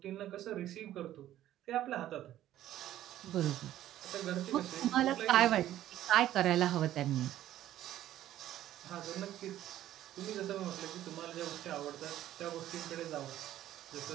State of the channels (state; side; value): quieter; left; 12.9 dB